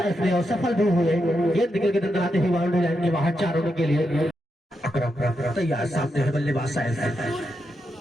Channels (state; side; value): normal; both; correlation 0.84